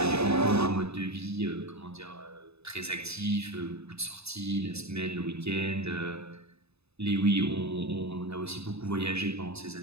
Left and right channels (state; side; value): late; left; 0.79 ms